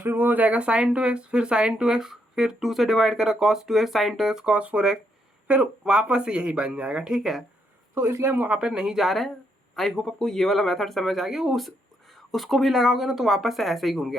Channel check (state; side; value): normal; both; correlation 0.76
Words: वो हो जाएगा sin 2x, फिर sin 2x, फिर 2 से डिवाइड करा cos 2x sin 2x cos 4x, फिर वापस से यही बन जाएगा, ठीक है। तो इसलिए हम वहाँ पर नहीं जा रहे हैं। आई होप आपको ये वाला मेथड समझ आ गया। उसको भी लगाओगे ना तो वापस से ऐसे ही घूम के